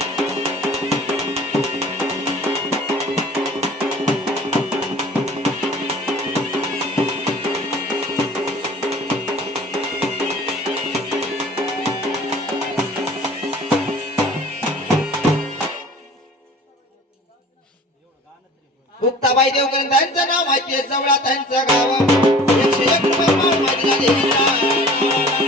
मुक्ताबाई देवकर त्यांचं नाव माहिती आहे जवळा त्यांचं गाव 101 रुपये माल माझ्या देवीला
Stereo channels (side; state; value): both; normal; correlation 0.45